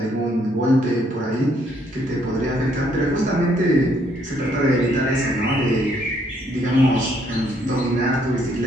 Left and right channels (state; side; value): normal; both; correlation 0.69